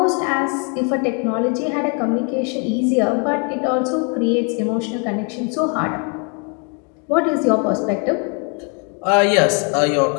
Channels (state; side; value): quieter; right; 37.1 dB